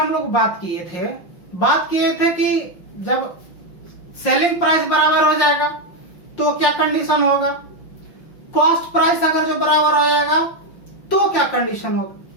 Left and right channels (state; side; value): late; right; 5.6 ms